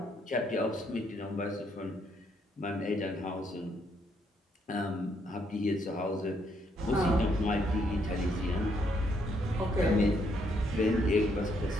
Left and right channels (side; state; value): both; normal; correlation 0.73